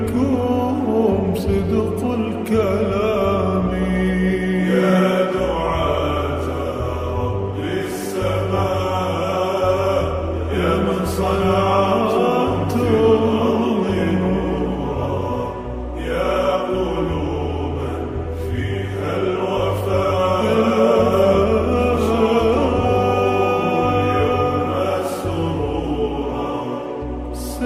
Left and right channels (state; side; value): identical; both; correlation 1.00